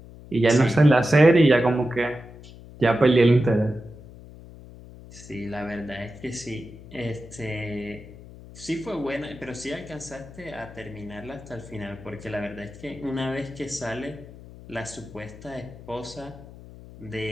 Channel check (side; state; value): left; noise; hum, 18 dB below the sound